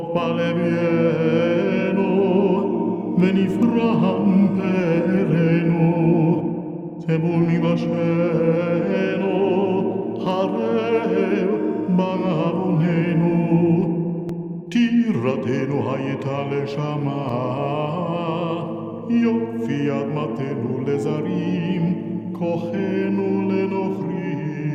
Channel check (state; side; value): identical; both; correlation 1.00